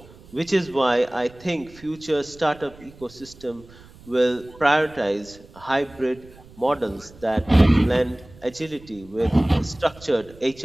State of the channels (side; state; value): right; noise; rumble, 22 dB below the sound